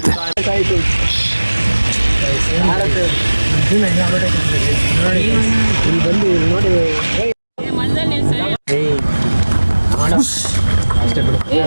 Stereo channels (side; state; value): both; inverted; correlation -1.00